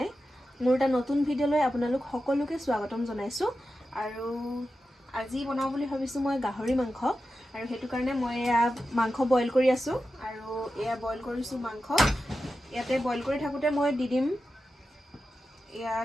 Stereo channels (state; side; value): normal; both; correlation 0.91